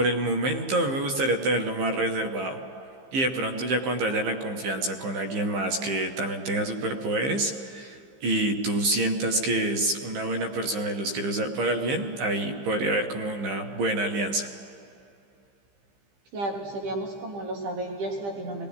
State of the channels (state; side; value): late; left; 15 ms